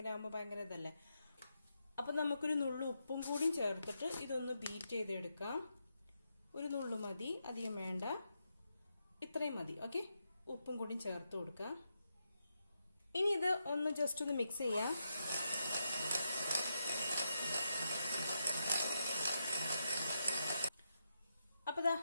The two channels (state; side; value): inverted; both; correlation -0.83